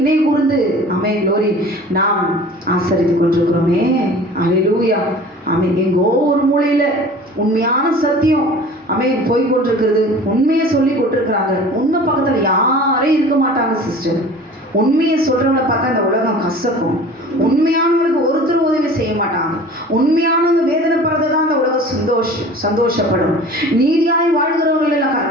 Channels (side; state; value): both; normal; correlation 0.43